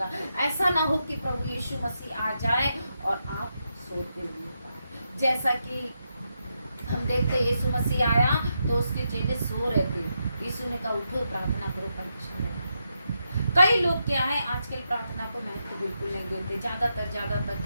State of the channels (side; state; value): both; inverted; correlation -0.84